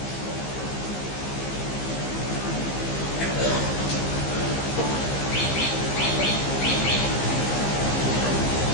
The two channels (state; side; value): late; right; 15 ms